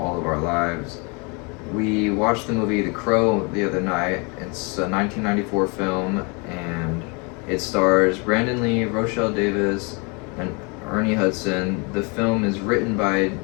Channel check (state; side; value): quieter; right; 31.5 dB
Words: of our lives. We watched the movie The Crow the other night. It's a 1994 film, and it stars Brandon Lee, Rochelle Davis, and Ernie Hudson. The film is written by